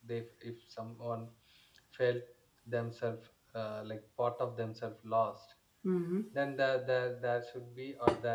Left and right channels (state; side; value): identical; both; correlation 1.00